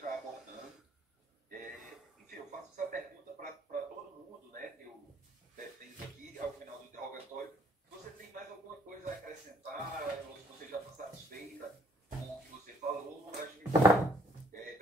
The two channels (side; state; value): both; normal; correlation 0.62